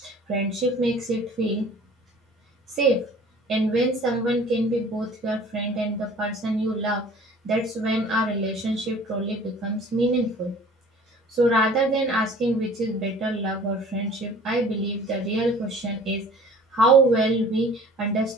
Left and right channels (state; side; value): normal; both; correlation 0.48